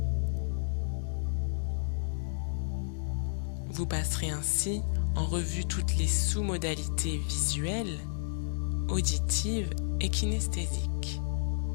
Vous passerez ainsi en revue toutes les sous-modalités visuelles, auditives et kinesthésiques.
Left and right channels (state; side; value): silent; right; 57 dB below the other